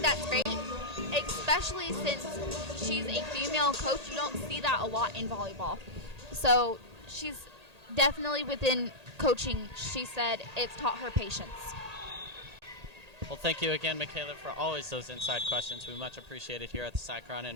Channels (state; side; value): late; left; 1.8 ms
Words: great, especially since she's a female coach. You don't see that a lot in volleyball. So she's definitely within coaching. She said it's taught her patience. Well, thank you again, Michaela, for always those inside questions. We much appreciate it here at the Cyclone.